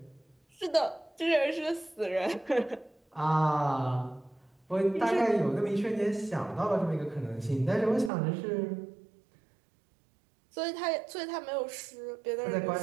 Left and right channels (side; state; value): left; drops out; at 8.1 s